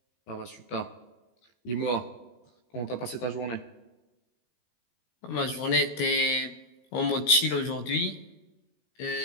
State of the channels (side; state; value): right; late; 17 ms